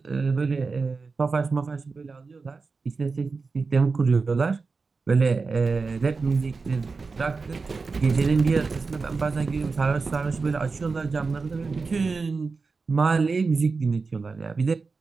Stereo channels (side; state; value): left; quieter; 4.4 dB